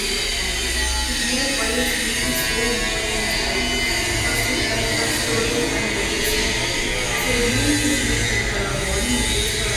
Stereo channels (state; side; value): identical; both; correlation 1.00